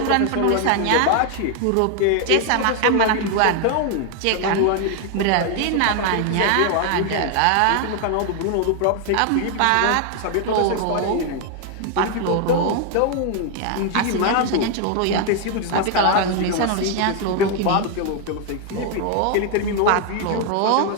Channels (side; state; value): both; different; correlation 0.00